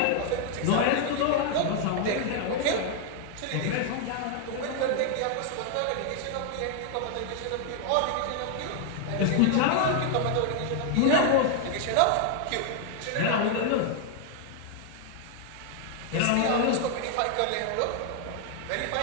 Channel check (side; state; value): both; different; correlation 0.00